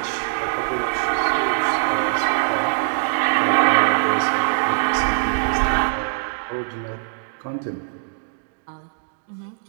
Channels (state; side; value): silent; left; digital silence